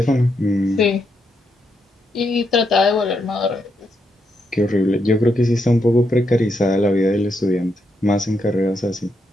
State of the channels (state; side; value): normal; both; correlation 0.80